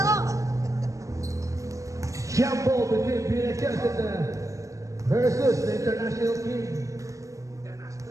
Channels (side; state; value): left; late; 0.16 ms